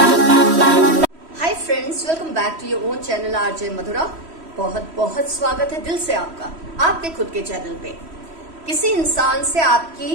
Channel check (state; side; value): late; left; 3.1 ms